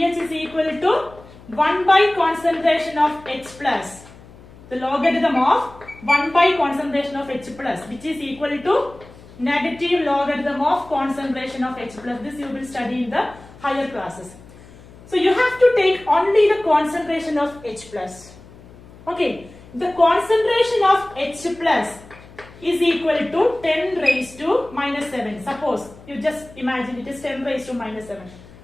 is equal to 1 by concentration of H+. The logarithm of 1 by concentration of H+, which is equal to negative logarithm of concentration of H+. This you will study in the higher classes. So you have to take only the concentration of H+. Okay, the concentration of H+ is equal to 10 raised to minus 7. Suppose you just imagine it is 10 raised to minus 7.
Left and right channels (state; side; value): noise; left; hum, 21 dB below the sound